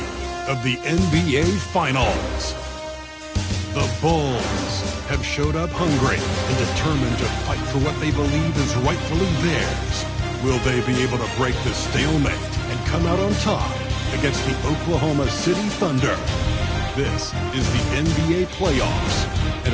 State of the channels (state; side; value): identical; both; correlation 1.00